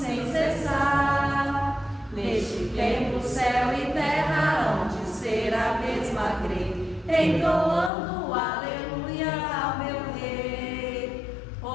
cessar, neste tempo céu e terra hão de ser a mesma grei, entoando aleluias ao meu Rei.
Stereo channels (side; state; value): right; drops out; at 7.9 s